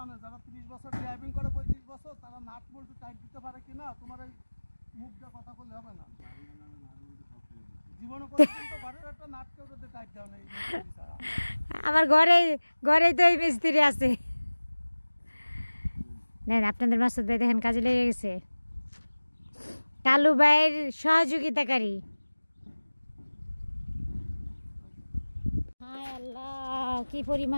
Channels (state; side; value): inverted; both; correlation -1.00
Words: যারা 30 বছর ড্রাইভিং করে 35 বছর, তারা নাট বল্টু টাইট দিতে পারে কিনা তোমার এই মুখ দিয়ে কথা বললে হবে না। জীবনে পর্যন্ত ঘরের একটা নাট কেউ যদি টাইট দাও না, আমার ঘরেই তো এই মিস্ত্রি আছে। নেন, আপনাদের মাসুদ ভাই দেখেন কাজে লেগে গেছে, কালু ভাইয়ের সহযোগিতাকারী। হায় আল্লাহ, কি